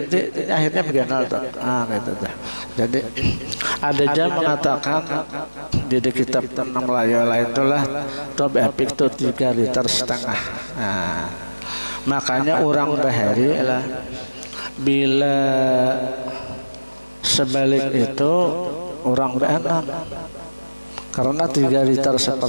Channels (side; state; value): both; inverted; correlation -1.00